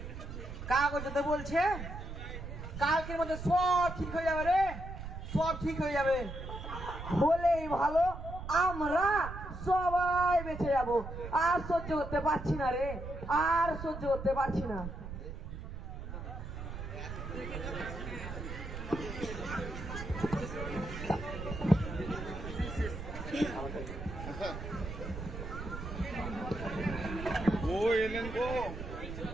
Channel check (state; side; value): noise; right; rumble, 8 dB below the sound